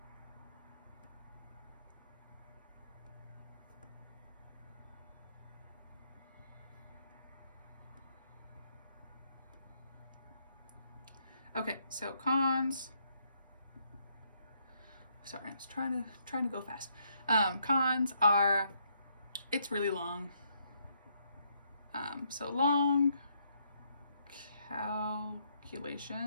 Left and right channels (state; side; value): inverted; both; correlation -0.73